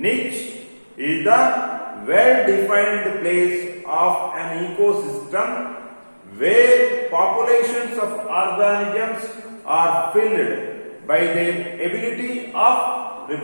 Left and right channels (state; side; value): inverted; both; correlation -1.00